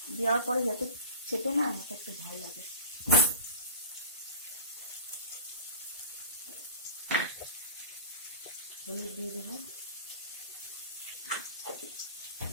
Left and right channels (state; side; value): inverted; both; correlation -0.38